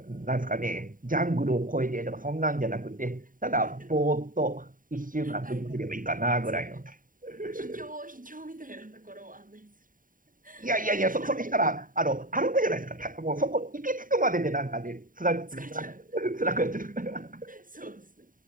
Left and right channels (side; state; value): left; late; 0.39 ms